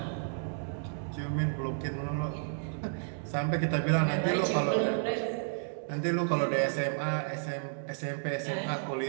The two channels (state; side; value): silent; left; digital silence